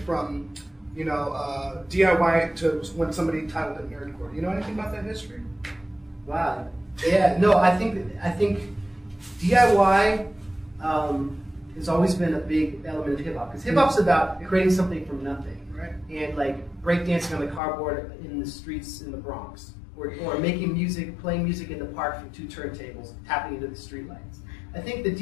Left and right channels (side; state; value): right; drops out; at 17.6 s